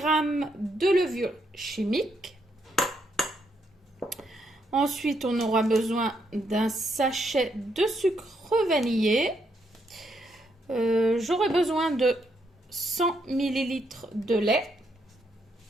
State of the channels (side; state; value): both; normal; correlation 0.77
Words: de levure chimique. Ensuite, on aura besoin d'un sachet de sucre vanillé. J'aurai besoin de 100 ml de lait,